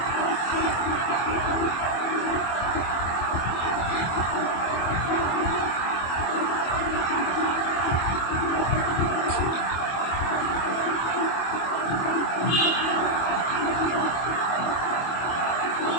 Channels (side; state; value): right; late; 24 ms